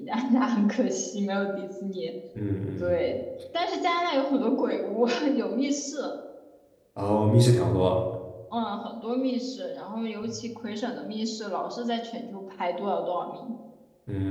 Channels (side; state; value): both; identical; correlation 1.00